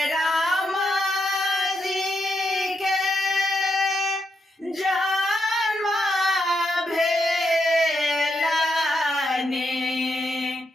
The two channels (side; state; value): both; normal; correlation 0.82